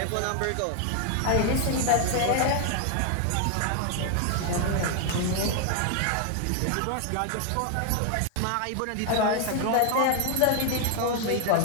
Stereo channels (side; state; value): both; different; correlation 0.00